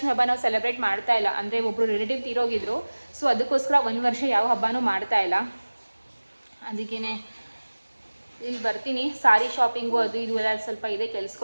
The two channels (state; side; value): inverted; both; correlation -1.00